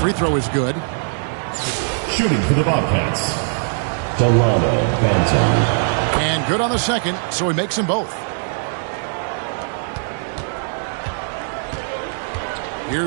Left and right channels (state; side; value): silent; left; digital silence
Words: throw is good. Shooting for the Bobcats, Delano Banton. And good on the second, so he makes them both.